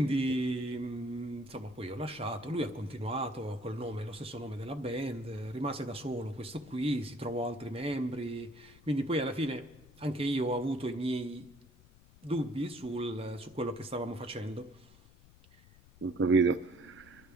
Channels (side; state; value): left; noise; rumble, 24 dB below the sound